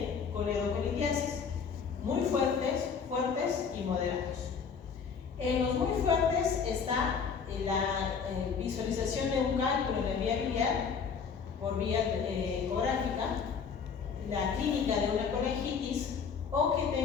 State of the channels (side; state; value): right; quieter; 6.1 dB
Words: coledocolitiasis, muy fuertes, fuertes y moderados. En los muy fuertes está la visualización de un cálculo en la vía biliar por vía ecográfica, la clínica de una colegitis o que